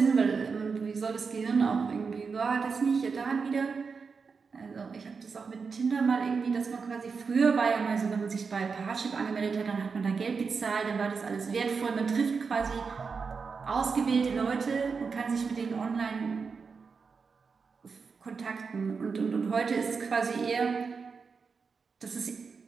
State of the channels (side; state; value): left; quieter; 5.2 dB